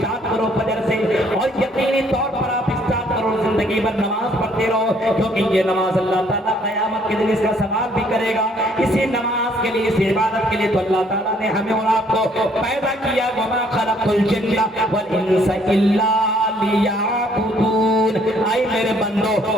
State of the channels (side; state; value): both; normal; correlation 0.64